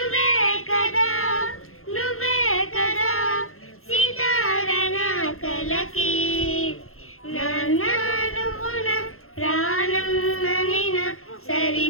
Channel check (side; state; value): right; late; 0.62 ms